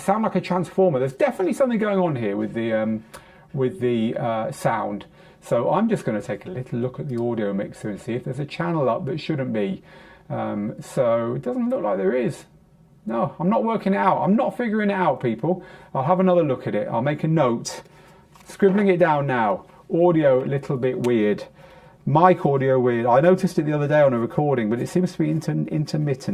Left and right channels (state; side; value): identical; both; correlation 1.00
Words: like a transformer. There's definitely something going on here with the sound. So I'm just going to take a little look at the audio mixer and see if there's a channel up that shouldn't be. So it doesn't look like there is. No, I'm not working it out. I'm not figuring it out, people. I'll have another look at it. I'll make a note. Scribbling it down now. Audio, a little bit weird. Mic audio weird. I noticed it the other day on a recording, but it seems to be